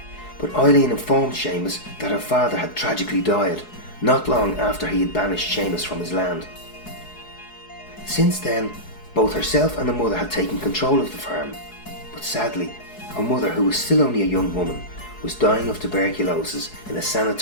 But Eileen informed Seamus that her father had tragically died, not long after he had banished Seamus from his land. Since then, both herself and the mother had taken control of the farm, but sadly, her mother, who was still only a young woman, was dying of tuberculosis in a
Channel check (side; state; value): right; late; 4.7 ms